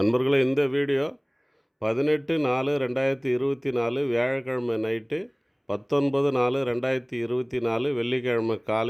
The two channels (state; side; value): identical; both; correlation 1.00